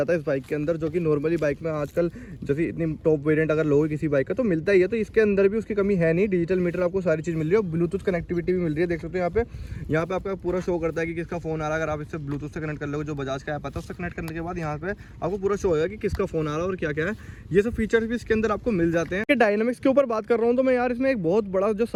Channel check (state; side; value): identical; both; correlation 1.00